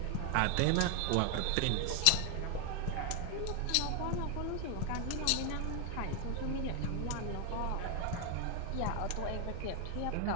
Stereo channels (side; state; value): both; different; correlation 0.01